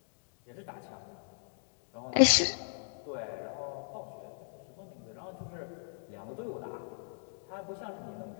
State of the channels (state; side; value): silent; right; digital silence